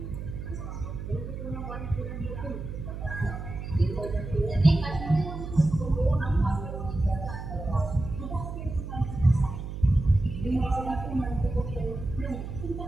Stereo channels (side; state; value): right; noise; hum, 7 dB below the sound